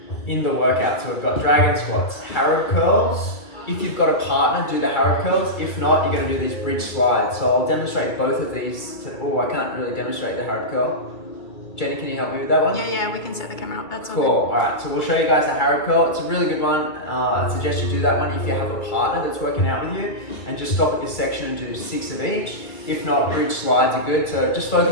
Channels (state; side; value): late; right; 2.6 ms